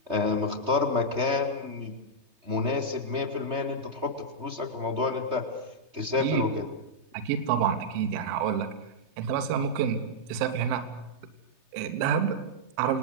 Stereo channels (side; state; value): left; late; 3.2 ms